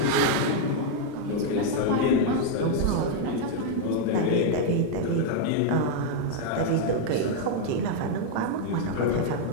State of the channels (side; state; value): both; different; correlation 0.00